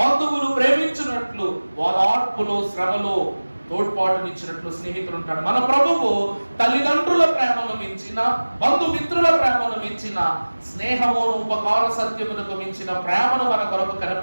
ప్రేమించినట్లు, ఓదార్పులో శ్రమలో తోడ్పాటునిచ్చినట్లు స్నేహితుడు ఉంటాడు. మన ప్రభువు తల్లిదండ్రుల ప్రేమను మించిన, బంధుమిత్రుల ప్రేమను మించిన, స్నేహమును ఉపకార సత్యమునకు మించిన ప్రేమను మన కొరకు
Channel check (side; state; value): both; inverted; correlation -1.00